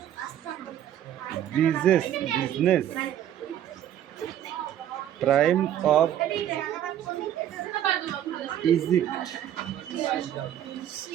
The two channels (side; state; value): left; quieter; 11.1 dB